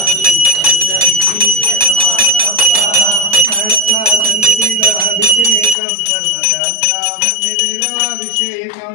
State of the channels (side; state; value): right; drops out; at 5.8 s